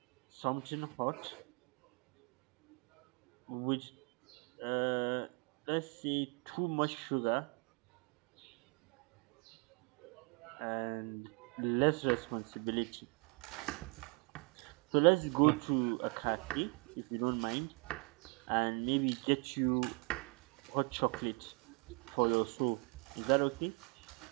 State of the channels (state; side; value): quieter; left; 31.1 dB